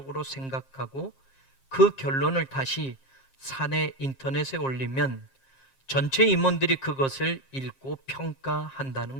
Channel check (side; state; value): right; late; 7.5 ms